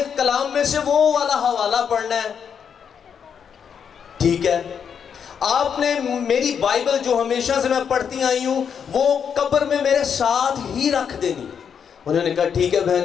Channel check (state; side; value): quieter; right; 7.4 dB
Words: کلام میں سے وہ والا حوالہ پڑھنا ہے، ٹھیک ہے؟ آپ نے میری بائبل جو ہمیشہ سے میں پڑھتی آئی ہوں وہ قبر میں میرے ساتھ ہی رکھ دینی۔ انہوں نے کہا ٹھیک ہے